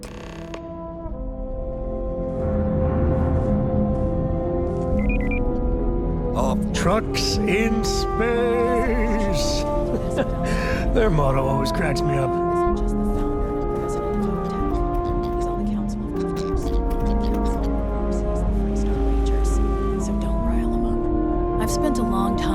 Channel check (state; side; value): identical; both; correlation 1.00